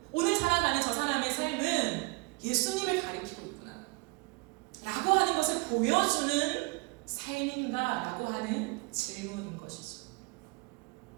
오늘 살아가는 저 사람의 삶은 예수님을 가리키고 있구나 라고 하는 것을 보여주는 삶인가 라고 하는 질문인 것이죠.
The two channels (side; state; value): left; quieter; 27.6 dB